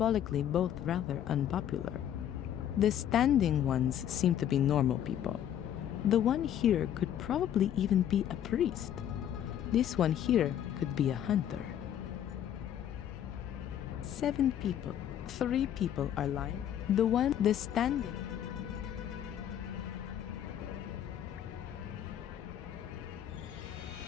both rather unpopular. The standing ones seem to be normal people. The one here could probably even be a priest. This one here could be a hunter. 7 people. 3 people are lying. The standing.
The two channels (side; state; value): right; quieter; 10.3 dB